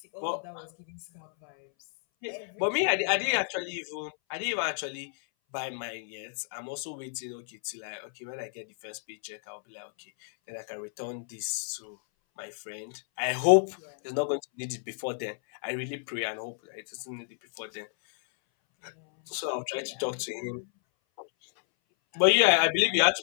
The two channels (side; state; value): right; silent; 58 dB below the other